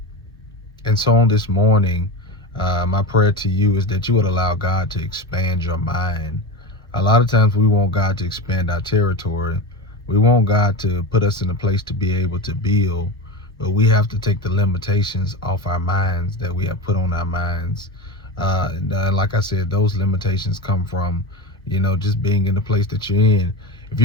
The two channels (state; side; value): normal; both; correlation 0.23